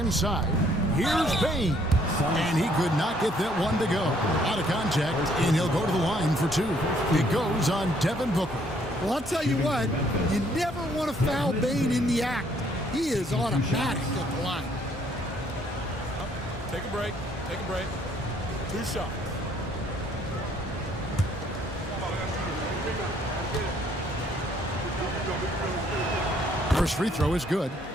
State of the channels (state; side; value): normal; both; correlation 0.65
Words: Here's Bane. And he could not get that one to go. Out of contact, and he'll go to the line for 2. It goes on Devin Booker. Well, I'll tell you what, you never want to foul Bane in the act. He is automatic at the line. Take a break. Take a break. 2 shots. First free throw is good.